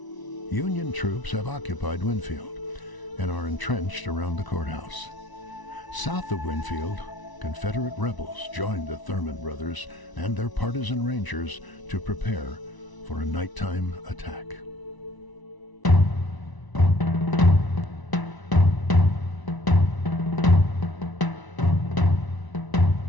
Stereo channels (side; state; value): right; late; 1.0 ms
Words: Union troops have occupied Winfield and are entrenched around the courthouse. South of Winfield, Confederate rebels joined the Thurman brothers and their partisan rangers to prepare for a nighttime attack.